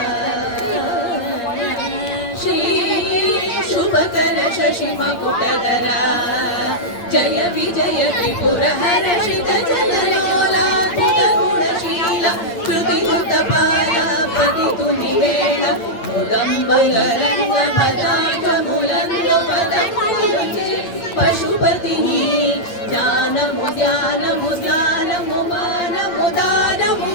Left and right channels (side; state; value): right; late; 9.0 ms